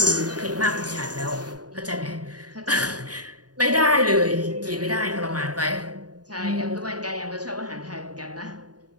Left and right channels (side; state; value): left; late; 0.68 ms